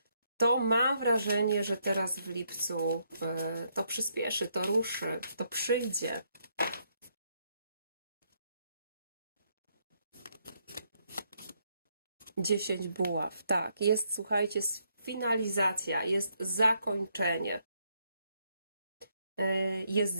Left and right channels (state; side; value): inverted; both; correlation -0.75